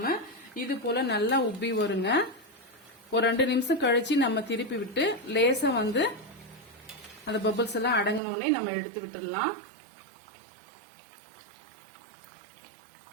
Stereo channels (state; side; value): drops out; left; at 8.2 s